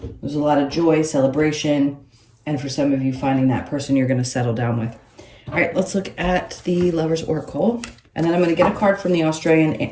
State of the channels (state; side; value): identical; both; correlation 1.00